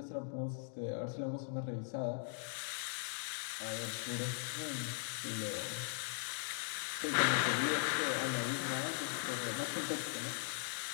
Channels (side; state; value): right; silent; digital silence